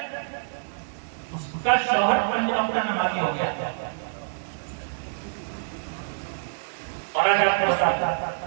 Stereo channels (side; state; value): left; silent; 61 dB below the other